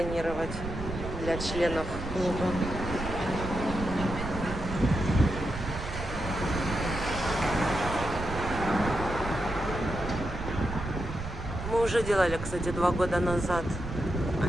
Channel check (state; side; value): noise; right; rumble, 8 dB below the sound